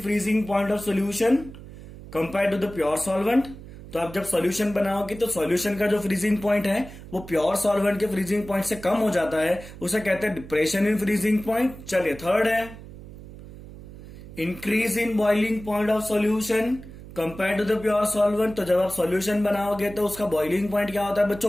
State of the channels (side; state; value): right; noise; hum, 15 dB below the sound